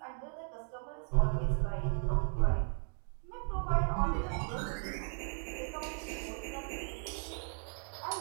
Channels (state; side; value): silent; left; 54 dB below the other